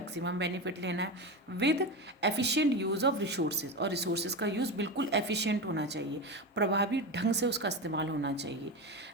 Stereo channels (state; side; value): normal; both; correlation 0.20